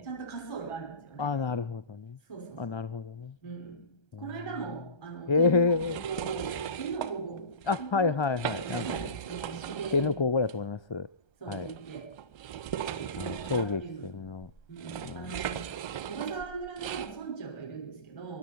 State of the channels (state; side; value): late; right; 1.3 ms